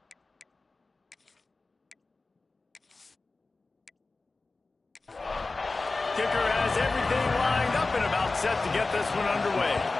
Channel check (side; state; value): right; quieter; 3.6 dB